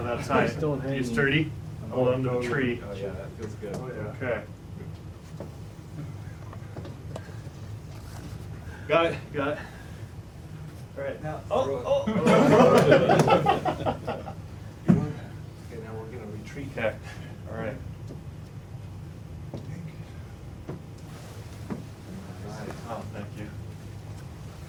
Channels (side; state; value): both; identical; correlation 1.00